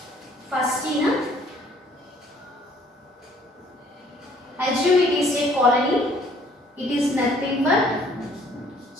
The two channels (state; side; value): normal; both; correlation 0.60